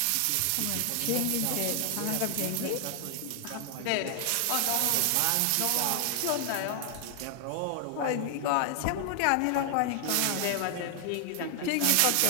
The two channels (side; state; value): both; different; correlation 0.00